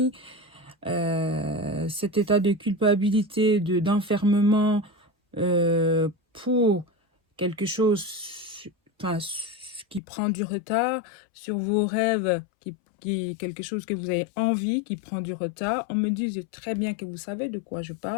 Cet état de culpabilité, d'enfermement pour quelque chose qui prend du retard, sur vos rêves, quelque chose que vous avez envie, qui prend du retard. On me dit très bien que vous savez de quoi je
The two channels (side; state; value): right; drops out; at 10.0 s